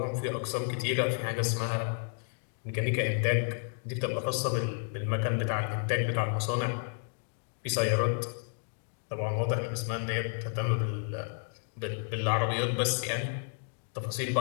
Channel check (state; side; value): silent; right; 57 dB below the other